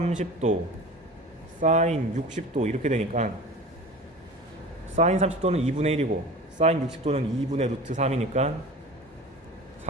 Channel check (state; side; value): normal; both; correlation 0.36